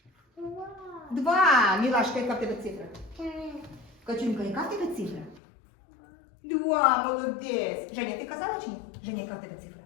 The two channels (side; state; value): right; drops out; at 5.4 s